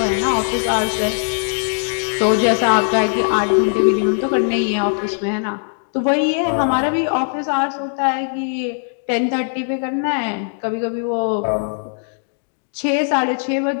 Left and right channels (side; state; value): right; silent; digital silence